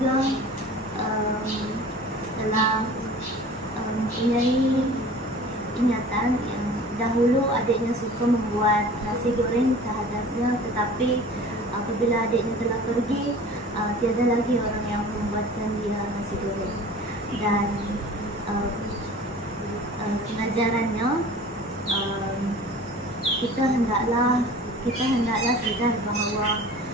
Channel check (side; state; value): both; normal; correlation 0.43